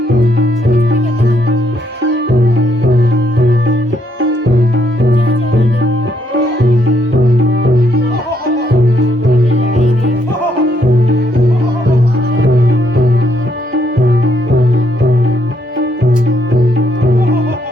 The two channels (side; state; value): both; normal; correlation 0.73